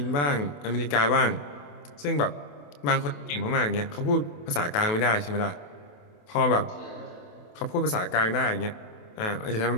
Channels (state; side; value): late; right; 28 ms